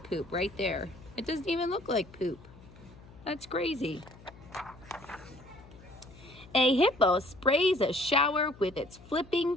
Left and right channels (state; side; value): noise; left; hum, 21 dB below the sound